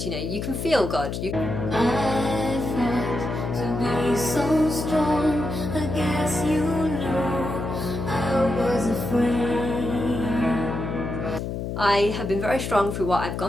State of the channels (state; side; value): noise; left; hum, 4 dB below the sound